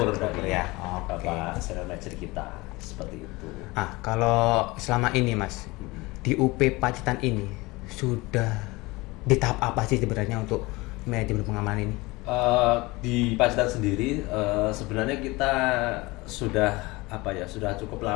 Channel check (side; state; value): right; quieter; 22.6 dB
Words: Terukur dari ya. Oke. Bapak senior manager kita seperti itu. Kalau selama ini Mas di UP Pacitan ini sudah di tahap apa sih sebenarnya untuk manajemen pengamanan ini? Di Pacitan sendiri sebenarnya kita sudah cukup